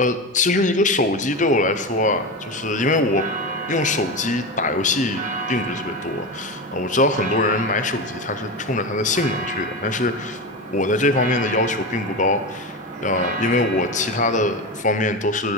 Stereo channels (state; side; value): normal; both; correlation 0.21